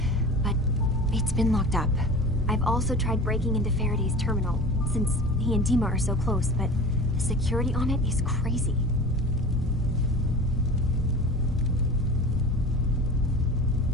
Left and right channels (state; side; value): normal; both; correlation 0.36